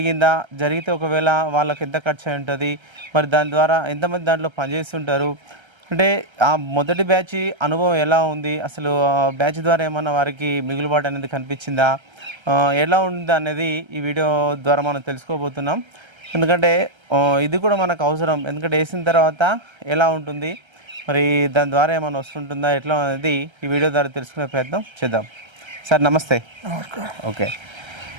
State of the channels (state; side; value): late; left; 1.3 ms